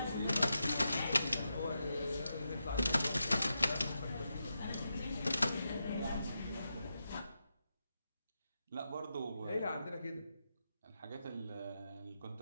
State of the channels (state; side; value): inverted; both; correlation -0.87